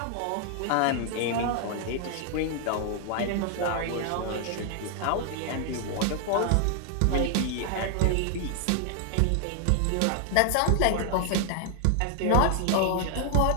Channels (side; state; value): both; different; correlation 0.00